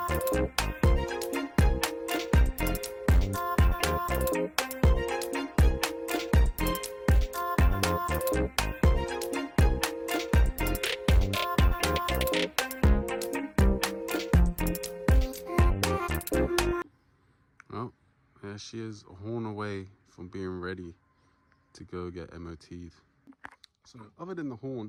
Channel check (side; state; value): both; identical; correlation 1.00